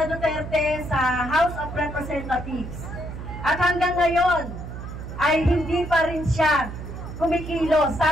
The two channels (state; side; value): noise; right; hum, 9 dB below the sound